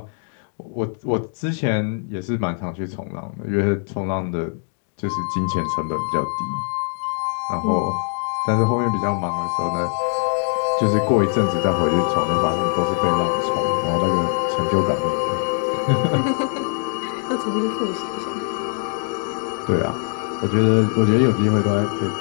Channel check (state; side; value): silent; right; 56 dB below the other